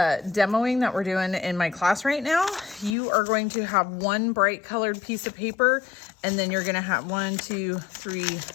that we're doing in my class right now, you are going to have one bright colored piece of paper, and then you're gonna have 1, 2, 3,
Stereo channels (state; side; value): drops out; right; at 3.0 s